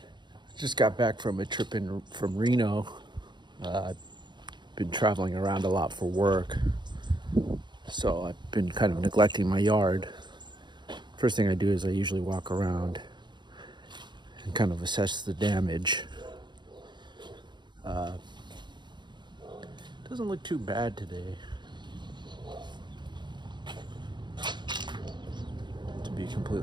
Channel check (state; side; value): late; left; 0.22 ms